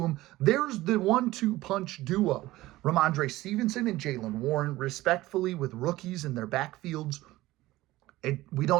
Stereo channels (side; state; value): left; quieter; 17.5 dB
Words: There's the 1-2 punch duo. Ramondre Stevenson and Jaylen Warren, respectfully, with rookies in their backfields. We